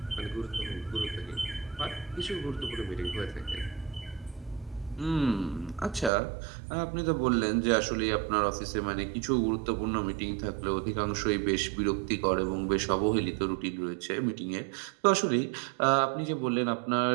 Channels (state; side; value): drops out; left; at 6.1 s